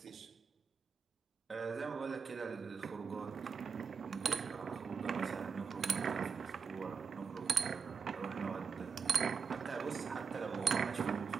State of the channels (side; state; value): left; quieter; 5.9 dB